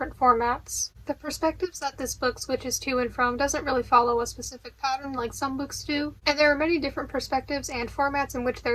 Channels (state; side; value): identical; both; correlation 1.00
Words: formats. The perspectives that this book switches to and from doesn't really follow a specific pattern like some books do, and there are many different perspectives and formats in which